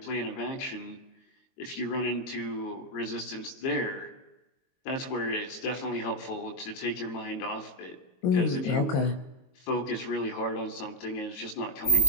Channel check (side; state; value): right; late; 22 ms